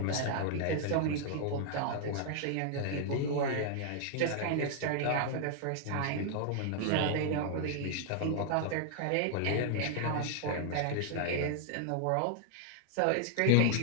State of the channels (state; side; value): different; both; correlation 0.00